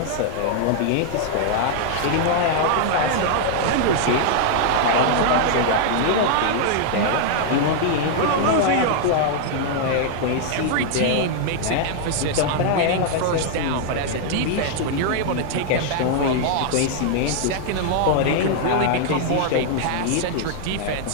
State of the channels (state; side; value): different; both; correlation -0.01